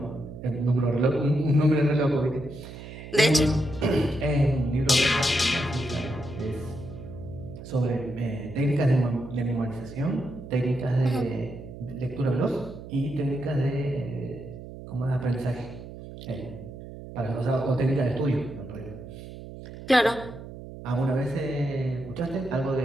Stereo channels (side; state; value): right; noise; hum, 13 dB below the sound